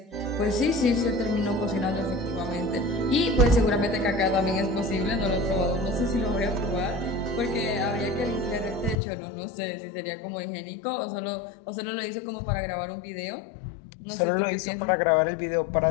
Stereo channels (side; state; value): right; drops out; at 9.0 s